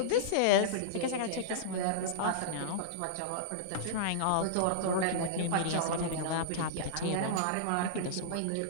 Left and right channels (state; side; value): different; both; correlation -0.02